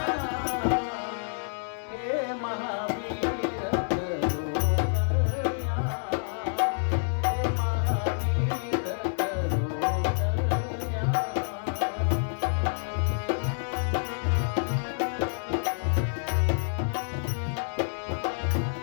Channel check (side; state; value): right; silent; digital silence